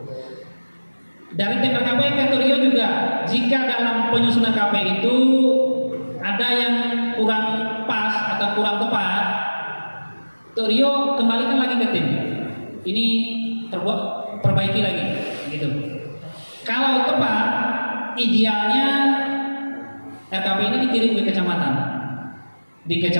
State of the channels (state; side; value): inverted; both; correlation -1.00